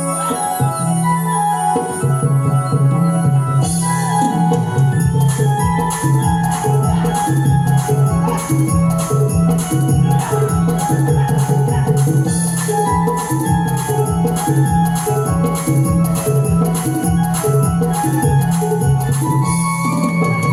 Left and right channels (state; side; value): identical; both; correlation 1.00